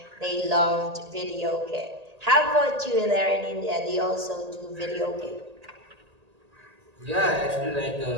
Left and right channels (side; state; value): left; late; 1.8 ms